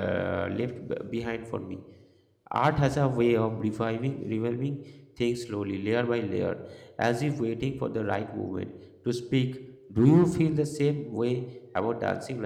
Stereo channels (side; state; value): both; identical; correlation 1.00